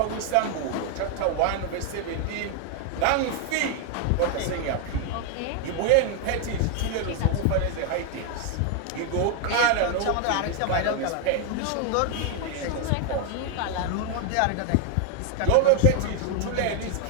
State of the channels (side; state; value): both; different; correlation 0.00